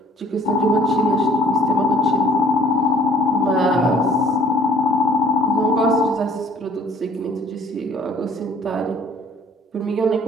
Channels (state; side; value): normal; both; correlation 0.55